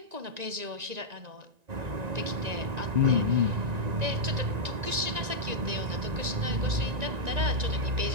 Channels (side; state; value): left; late; 1.9 ms